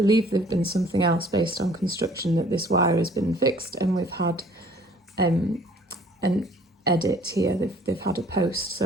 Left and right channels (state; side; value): normal; both; correlation 0.55